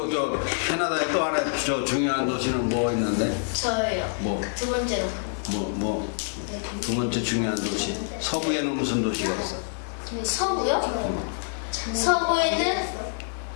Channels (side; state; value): right; silent; digital silence